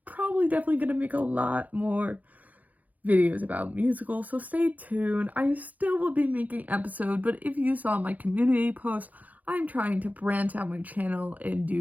probably definitely going to make a lot more videos about musicals, so stay tuned. I still will be making episodes, but if you saw my community post, I'm trying to branch out my channel and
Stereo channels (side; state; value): left; late; 0.078 ms